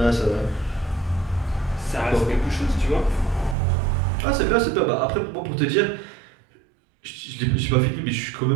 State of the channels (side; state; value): left; drops out; at 3.6 s